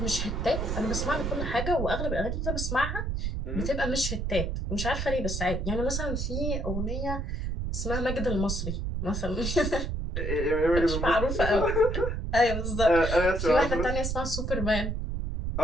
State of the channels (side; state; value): right; noise; rumble, 2 dB below the sound